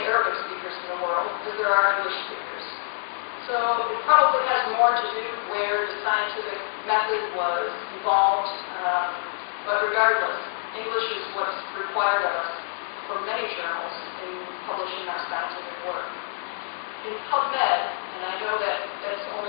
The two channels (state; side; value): silent; right; digital silence